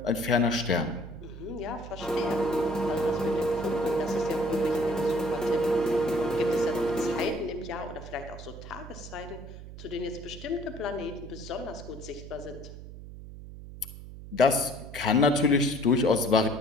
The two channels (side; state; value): right; noise; hum, 13 dB below the sound